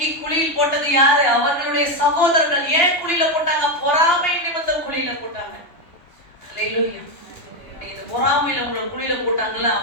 குழியில் போட்டது யாரு? அவர்களுடைய சகோதரர்கள். ஏன் குழியில போட்டாங்க? பொறாமை நிமித்தம் குழியில போட்டாங்க. ஹalleluya. இந்த பொறாமையில உங்களை குழியில போட்டாங்கல்ல,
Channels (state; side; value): late; right; 3.1 ms